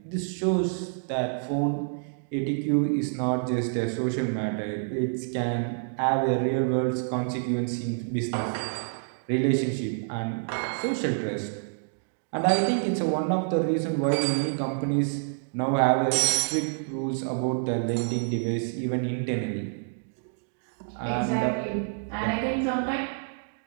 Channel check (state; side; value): silent; left; digital silence